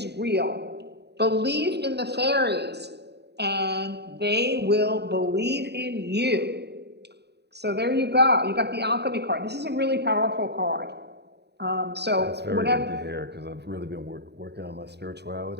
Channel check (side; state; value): left; late; 0.49 ms